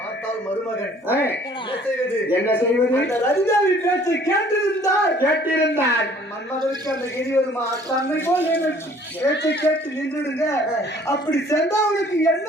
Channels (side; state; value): both; normal; correlation 0.55